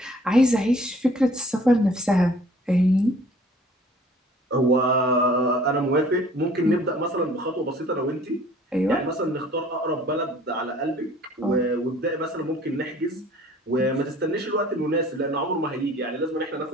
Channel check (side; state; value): both; normal; correlation 0.53